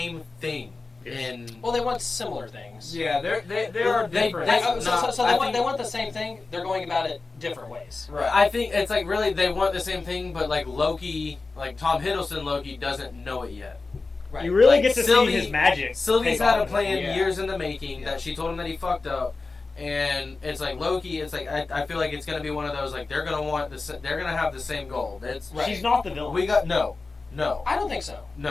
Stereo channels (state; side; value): quieter; right; 3.8 dB